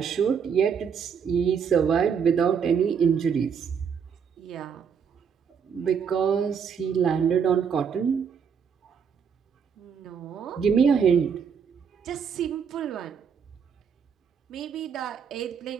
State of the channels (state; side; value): quieter; left; 6.9 dB